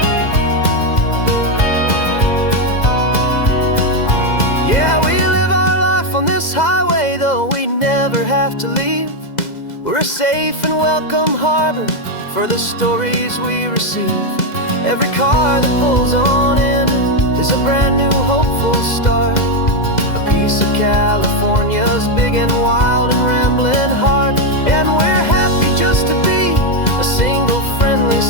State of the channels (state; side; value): late; right; 2.0 ms